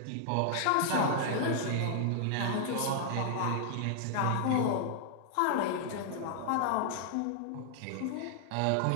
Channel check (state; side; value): different; both; correlation 0.00